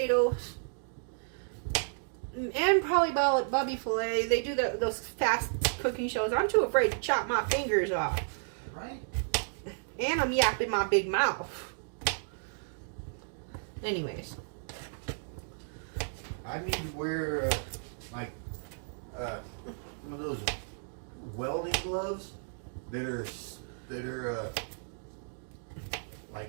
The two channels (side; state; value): left; silent; digital silence